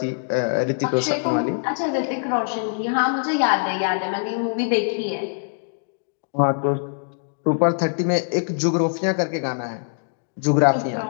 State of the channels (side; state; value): right; silent; digital silence